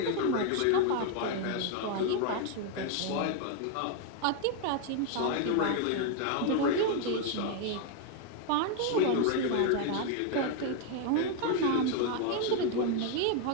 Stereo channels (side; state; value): both; different; correlation 0.01